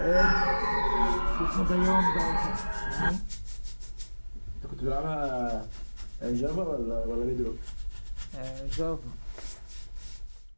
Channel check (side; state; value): both; inverted; correlation -1.00